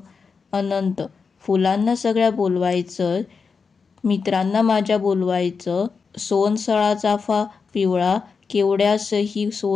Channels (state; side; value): quieter; right; 5.2 dB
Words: अनंत. फुलांना सगळ्या बोलवायचं, मित्रांना माझ्या बोलवायचं. सोनसळा चाफा पिवळा, केवड्यासही